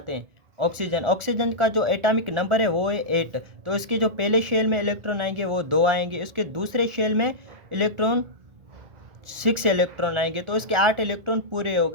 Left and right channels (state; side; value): late; left; 1.4 ms